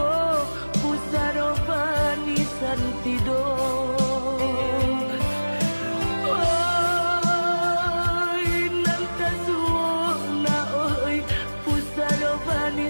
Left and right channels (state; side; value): inverted; both; correlation -1.00